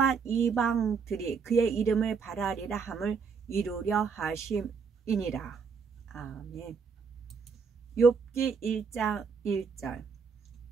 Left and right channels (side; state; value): left; quieter; 5.7 dB